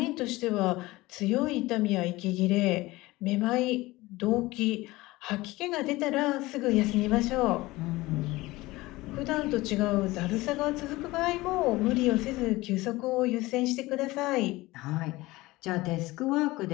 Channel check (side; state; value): right; quieter; 19.8 dB